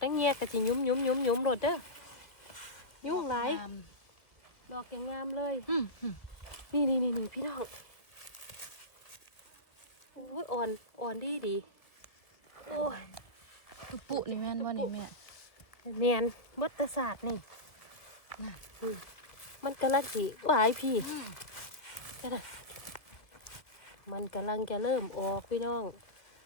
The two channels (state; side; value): late; right; 1.5 ms